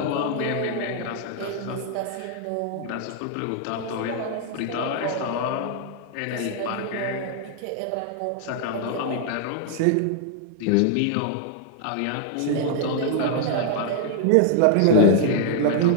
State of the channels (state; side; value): different; both; correlation -0.01